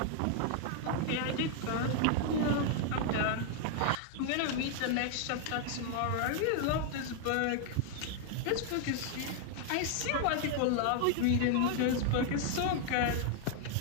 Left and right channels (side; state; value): both; different; correlation 0.00